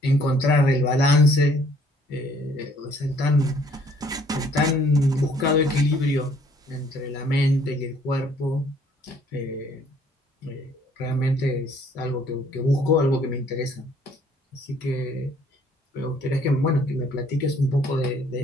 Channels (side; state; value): both; normal; correlation 0.61